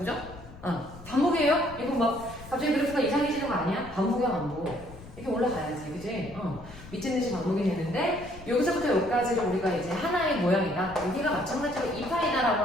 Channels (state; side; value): noise; left; rumble, 17 dB below the sound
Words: 반복이에요? 이거 막 갑자기 그래프가 이상해지는 거 아니야? 반복이야, 반복. 이렇게 올라가야지, 그지? 미친듯이 반복이 되는데, 여기서부터 여기까지를 우리가 이제 하나의 모양이다. 여기가 마찬가지로 2파이다라고